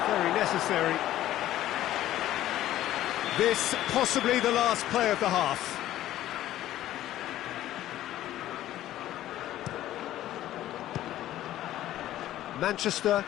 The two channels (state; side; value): quieter; right; 13.6 dB